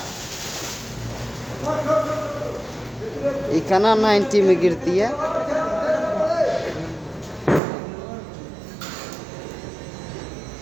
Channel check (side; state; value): left; drops out; at 7.6 s